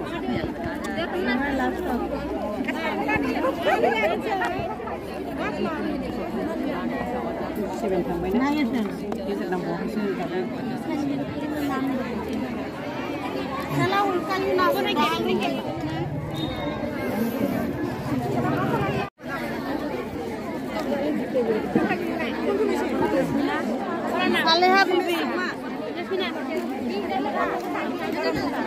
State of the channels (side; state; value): both; identical; correlation 1.00